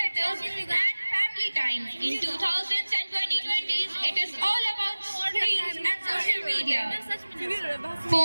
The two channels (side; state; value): both; inverted; correlation -1.00